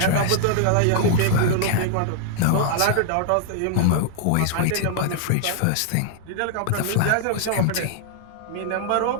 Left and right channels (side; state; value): both; different; correlation -0.01